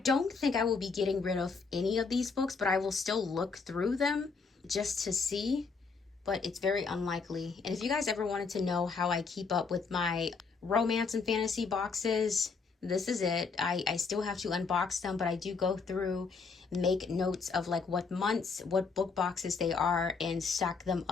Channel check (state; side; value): quieter; right; 4.9 dB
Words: think I will be getting rid of any of these books, but I will still look through them just to see, but it's very unlikely. And if you guys ever wanted to know how I keep up with my romance and fantasy boxes, this is it. I still have to unbox them, but I do go through, make notes of like what months, what book boxes they are, and stack them